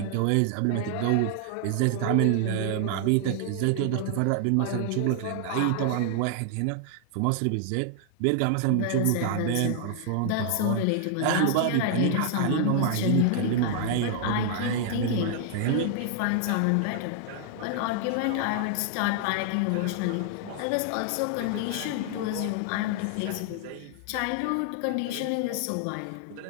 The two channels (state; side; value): different; both; correlation -0.01